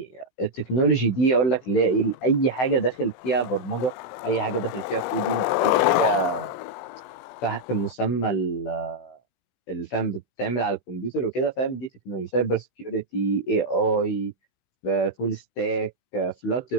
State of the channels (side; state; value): right; late; 17 ms